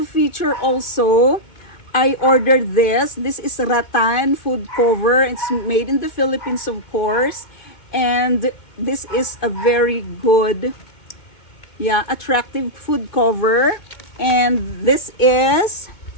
feature also. I ordered this. This is rattan food cover. It's made in the Philippines, of course. And this is a very good, attractive food cover. And this is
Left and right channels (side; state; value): right; late; 2.2 ms